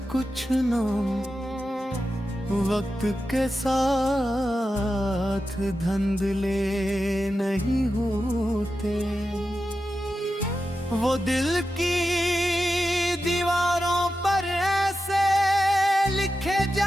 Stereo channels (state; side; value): normal; both; correlation 0.91